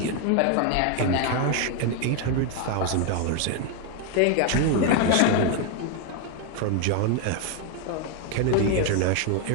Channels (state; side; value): different; both; correlation 0.01